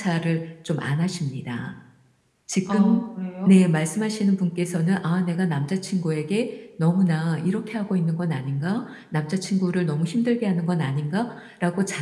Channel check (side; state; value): both; identical; correlation 1.00